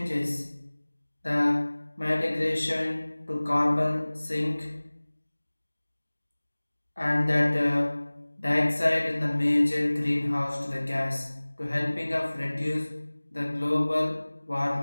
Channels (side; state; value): both; inverted; correlation -1.00